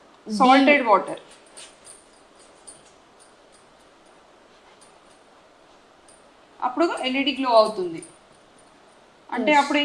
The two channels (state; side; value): identical; both; correlation 1.00